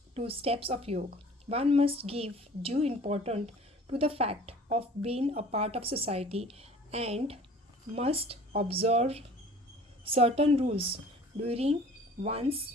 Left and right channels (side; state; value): both; normal; correlation 0.48